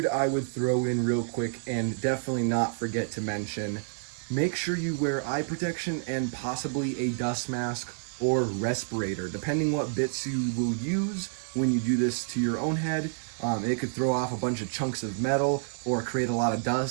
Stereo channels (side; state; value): left; silent; 59 dB below the other